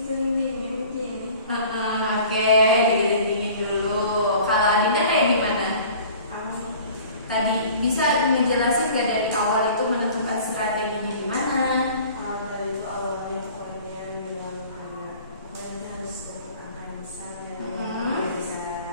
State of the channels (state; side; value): inverted; both; correlation -0.46